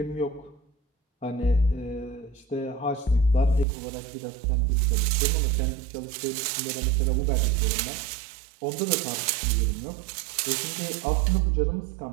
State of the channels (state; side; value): drops out; left; at 3.7 s